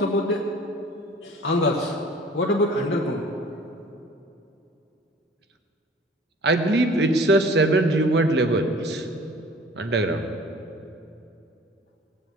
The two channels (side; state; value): both; normal; correlation 0.48